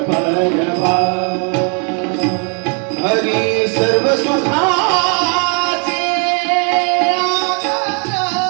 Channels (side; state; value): left; quieter; 39.1 dB